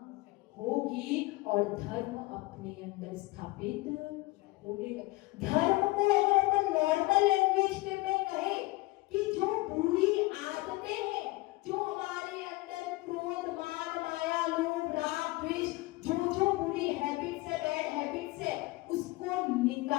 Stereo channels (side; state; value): right; quieter; 21.4 dB